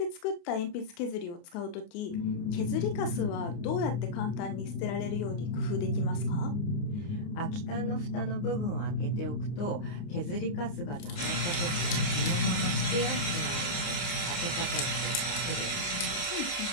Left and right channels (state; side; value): late; right; 29 ms